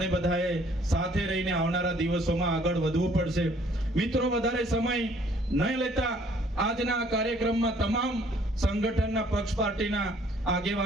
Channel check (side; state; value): both; normal; correlation 0.60